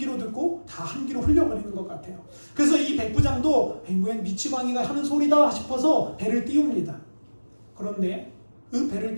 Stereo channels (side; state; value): both; inverted; correlation -1.00